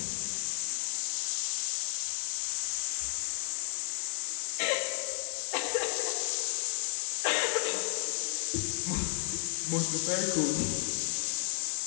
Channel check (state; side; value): silent; right; digital silence